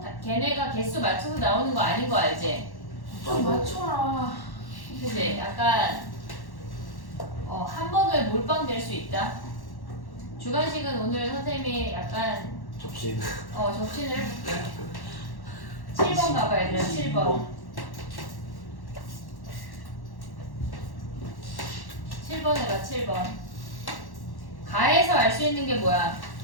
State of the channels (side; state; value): right; late; 1.1 ms